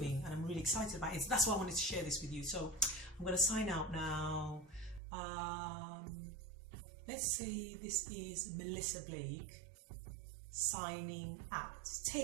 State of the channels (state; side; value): drops out; left; at 5.0 s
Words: and I'm really excited about it. So that's why I wanted to share this with you. So I'm going to sign out now. Let's say this is Melissa Blake signing out.